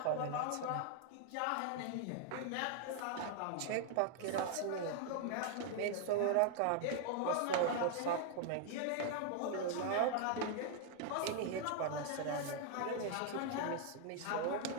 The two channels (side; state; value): both; different; correlation 0.00